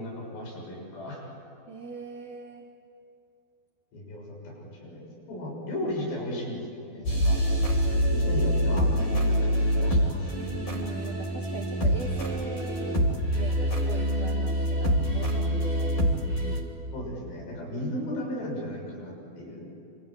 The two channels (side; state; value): right; late; 12 ms